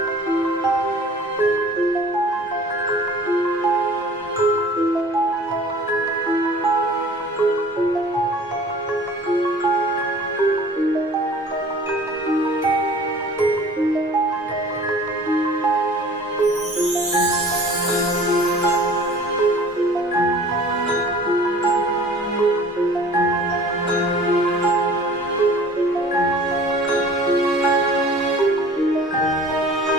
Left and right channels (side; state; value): both; normal; correlation 0.47